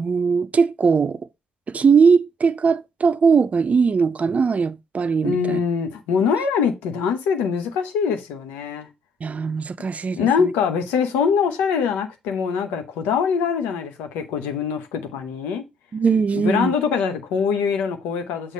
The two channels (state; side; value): normal; both; correlation 0.67